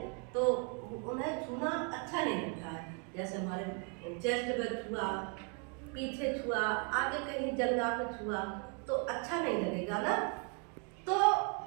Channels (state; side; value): quieter; left; 38.2 dB